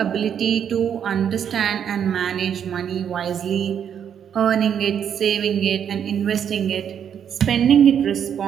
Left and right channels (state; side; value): quieter; left; 8.5 dB